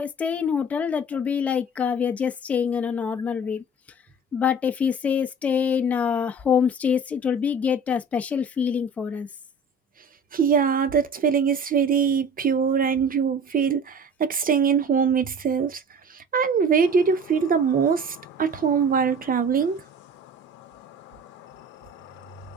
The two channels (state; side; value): normal; both; correlation 0.41